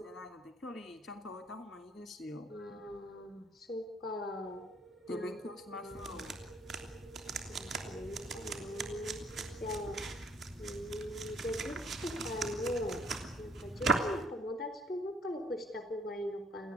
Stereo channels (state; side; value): normal; both; correlation 0.62